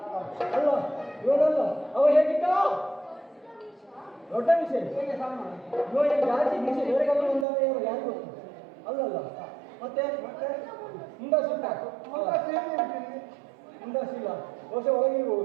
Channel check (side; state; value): left; drops out; at 7.5 s